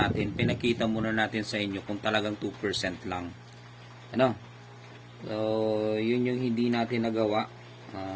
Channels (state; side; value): identical; both; correlation 1.00